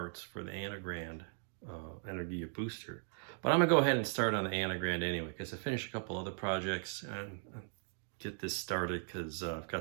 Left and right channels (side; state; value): left; silent; 52 dB below the other